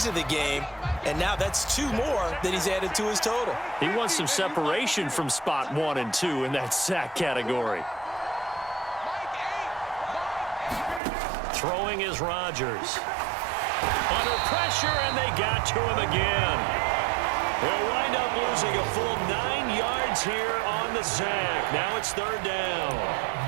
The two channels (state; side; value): drops out; left; at 11.0 s